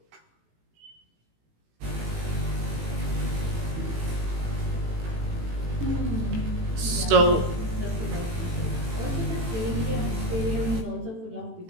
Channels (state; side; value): late; left; 18 ms